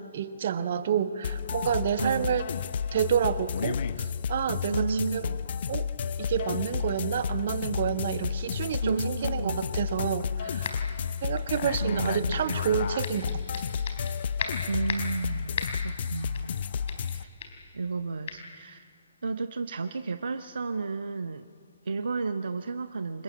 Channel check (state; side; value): inverted; both; correlation -0.68